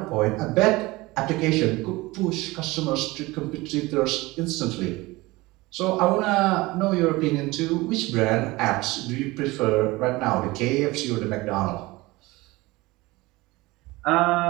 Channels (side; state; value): left; quieter; 21.2 dB